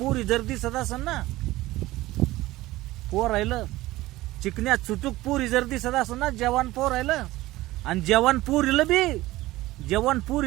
जर दिसत असेल ना, पोर राहिलं चिकन्या चुटूक पोरी जर दिसत असेल ना, जवान पोर राहिलं. आणि जवान पुरीला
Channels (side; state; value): left; quieter; 17.8 dB